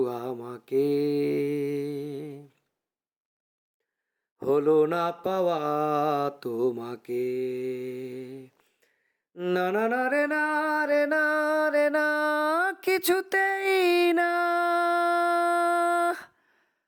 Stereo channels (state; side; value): identical; both; correlation 1.00